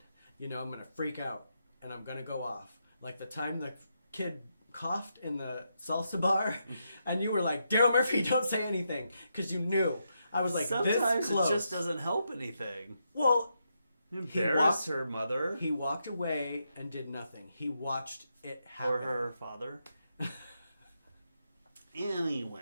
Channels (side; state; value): both; inverted; correlation -0.82